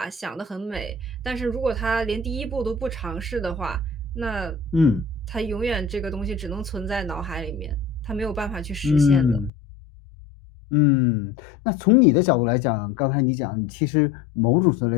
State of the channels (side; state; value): right; drops out; at 9.5 s